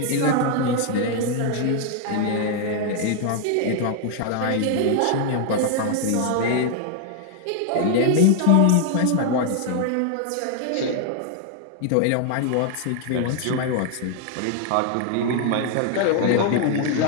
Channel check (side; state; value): both; different; correlation 0.00